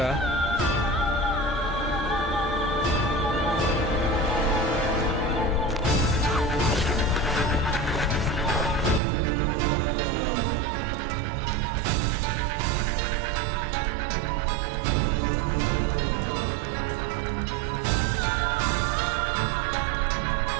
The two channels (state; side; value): drops out; left; at 9.0 s